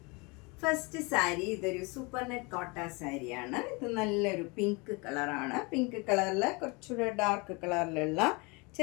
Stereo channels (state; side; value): quieter; right; 28.1 dB